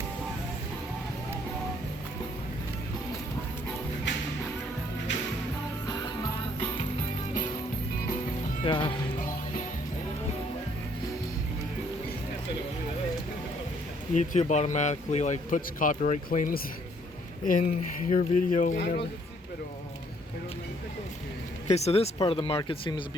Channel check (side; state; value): both; normal; correlation 0.65